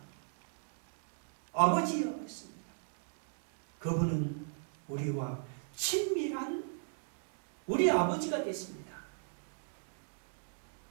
아버지여 했습니다. 그분은 우리와 친밀한 우리 아버지가 됐습니다.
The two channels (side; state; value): left; silent; digital silence